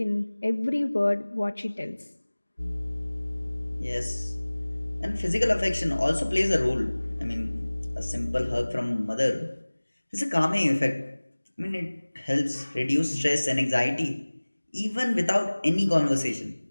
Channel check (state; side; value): inverted; both; correlation -1.00